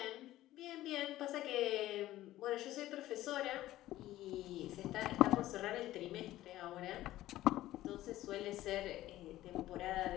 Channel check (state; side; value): quieter; right; 15.1 dB